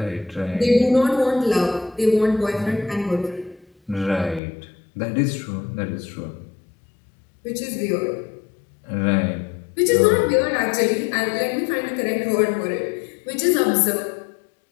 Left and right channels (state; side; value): drops out; right; at 4.4 s